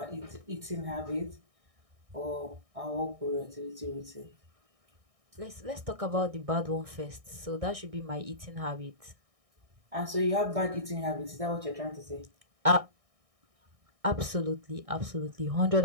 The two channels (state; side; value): late; left; 1.6 ms